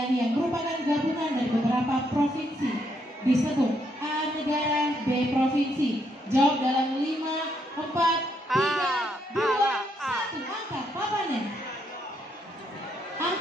yang merupakan gabungan dari beberapa provinsi disebut A. Negara, B. Provinsi. Jawab dalam 5, 4, 3, 2, 1. Angkat papannya.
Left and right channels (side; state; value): both; normal; correlation 0.75